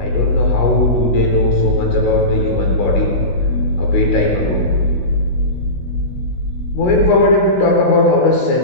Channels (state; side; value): late; right; 16 ms